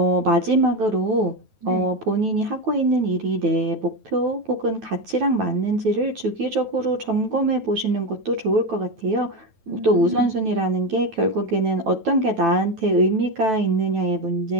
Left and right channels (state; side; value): late; left; 9.2 ms